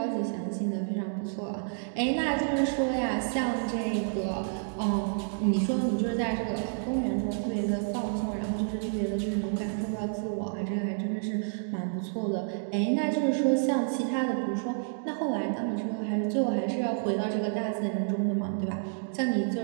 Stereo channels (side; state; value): left; silent; digital silence